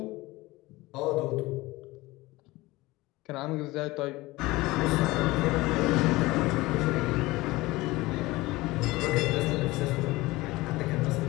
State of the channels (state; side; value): quieter; right; 20.2 dB